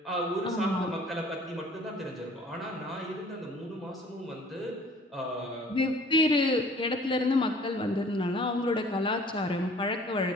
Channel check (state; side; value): normal; both; correlation 0.52